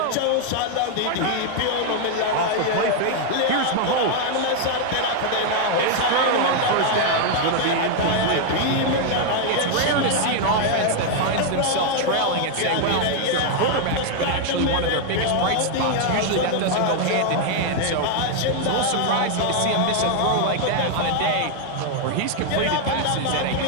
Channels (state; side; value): different; both; correlation 0.00